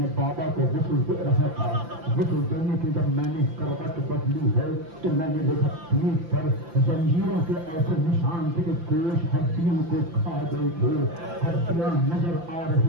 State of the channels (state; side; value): late; left; 5.8 ms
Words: बाबा को गुस्ल दे रहा था, गुस्ल देने की जब मैंने करवट बदली है तो मैंने देखा पीठ पर जंजीरों के ऐसे निशान थे कि गोश्त हड्डियों को खा गए थे, हड्डियां नजर आ